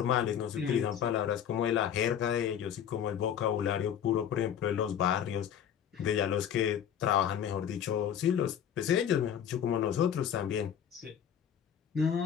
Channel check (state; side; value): quieter; right; 9.0 dB